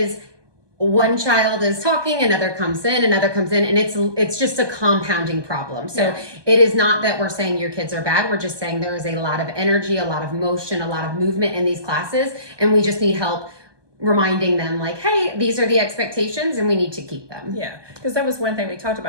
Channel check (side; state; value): left; late; 1.2 ms